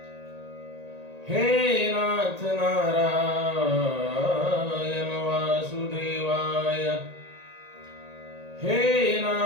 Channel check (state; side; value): late; left; 1.8 ms